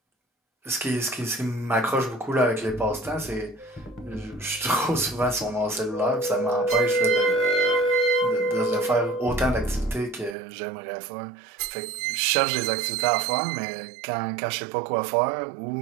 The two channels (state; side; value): drops out; left; at 10.4 s